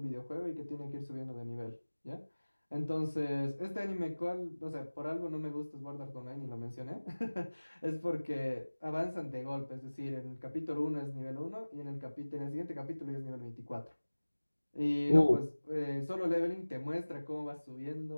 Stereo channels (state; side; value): inverted; both; correlation -1.00